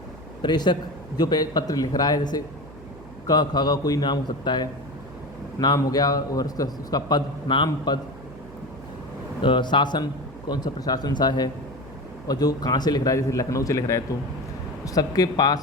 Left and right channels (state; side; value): noise; right; hum, 19 dB below the sound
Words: प्रेषक जो पत्र लिख रहा है, जैसे क ख का कोई नाम हो सकता है, नाम हो गया, और उसका पद, नाम पद, शासन, कौन सा प्रशासन सा है, और जो कहाँ से लिख रहा है, जैसे लखनऊ से लिख रहा है तो सबके